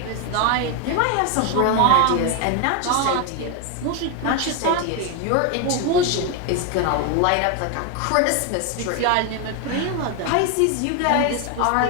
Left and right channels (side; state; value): both; different; correlation 0.01